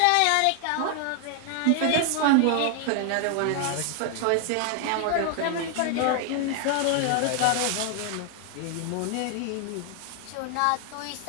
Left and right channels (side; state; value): both; different; correlation 0.00